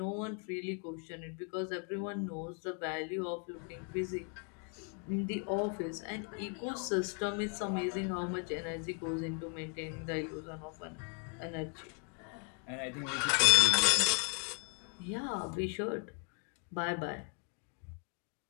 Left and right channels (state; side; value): quieter; right; 38.2 dB